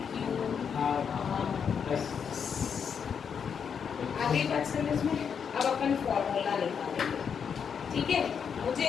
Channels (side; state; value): right; quieter; 7.0 dB